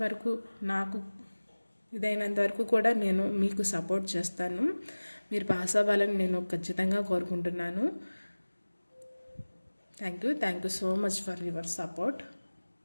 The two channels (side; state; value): both; inverted; correlation -1.00